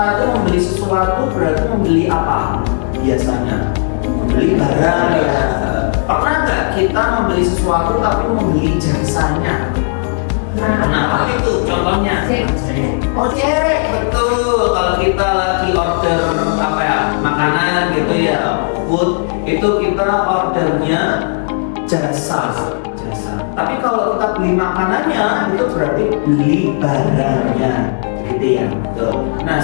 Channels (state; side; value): silent; right; digital silence